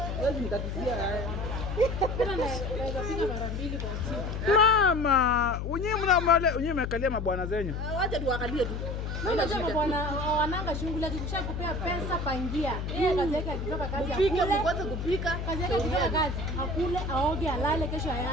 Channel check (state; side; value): noise; left; hum, 4 dB below the sound